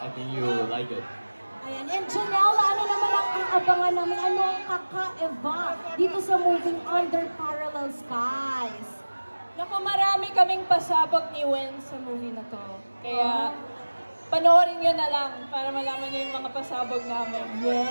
I think you will like it. Ayan. And Janelle, ano naman ang aabangan namin? Ano ang kakaiba dito sa moving Under Parallel Skies? Naku, marami kaming pasabog ni Wen sa movie na to. Kaya, panoorin nyo na lang para malaman nyo yung mga pasabog namin.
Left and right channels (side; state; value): both; inverted; correlation -1.00